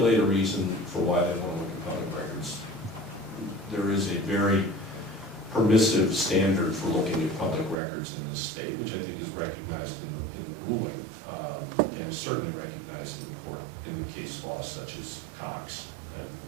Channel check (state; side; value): drops out; left; at 7.8 s